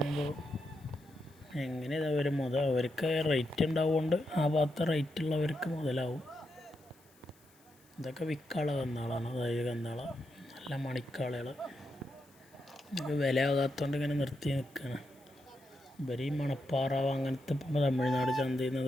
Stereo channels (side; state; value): left; noise; hiss, 30 dB below the sound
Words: എങ്ങനെ ഇതവർ അവർക്ക് റേറ്റ് ഉണ്ടാവുകൊണ്ട് ആ ഭാഗത്ത് റേറ്റുള്ളവർക്ക് മുതലാവും. ഇതൊക്കെ വിൽക്കാനുള്ള കന്നാളാണ്. അതായത് കന്നാള നല്ല മണിക്കാളകൾ. ഇതൊക്കെ വില ആകാത്തതുകൊണ്ട് ഇങ്ങനെ നിർത്തി നിൽക്കുകയാണ്. ഇവർ ഈ മണപ്പാറാവ് അങ്ങനത്തെ ഇപ്പോൾ തമിഴ്നാട് ചന്തയിൽ നിന്ന്